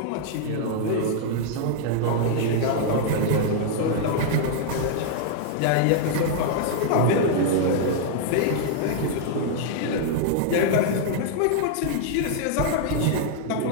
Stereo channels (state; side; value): different; both; correlation -0.01